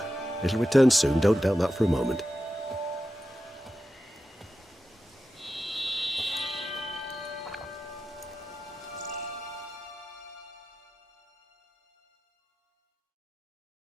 It'll return soon, don't doubt that for a moment.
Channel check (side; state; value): both; normal; correlation 0.92